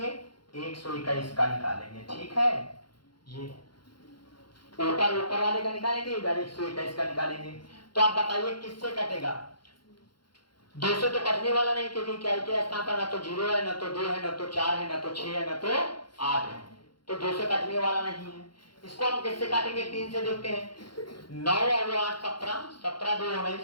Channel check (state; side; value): late; right; 0.72 ms